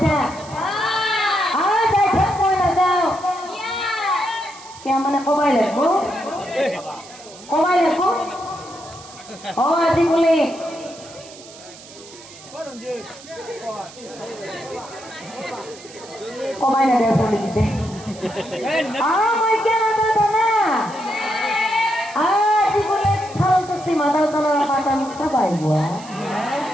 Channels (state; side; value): noise; right; hiss, 19 dB below the sound